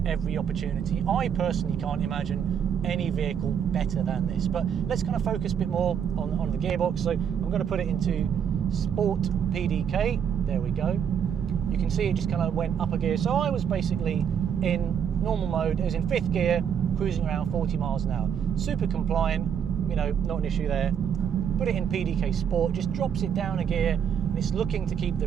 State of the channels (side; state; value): left; quieter; 8.2 dB